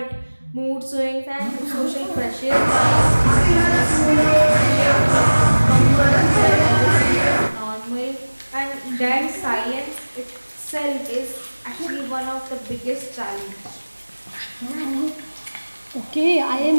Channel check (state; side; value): inverted; both; correlation -1.00